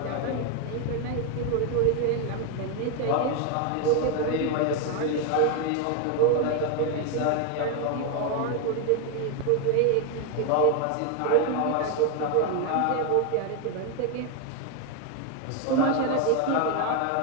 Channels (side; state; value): both; different; correlation 0.01